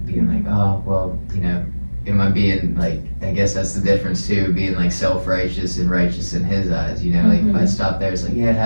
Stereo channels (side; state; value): both; inverted; correlation -1.00